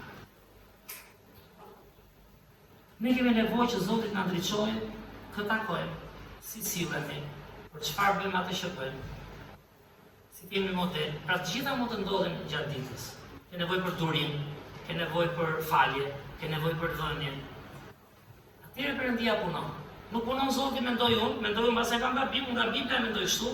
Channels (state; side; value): identical; both; correlation 1.00